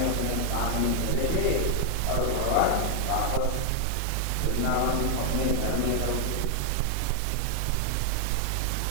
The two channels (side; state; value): both; different; correlation 0.00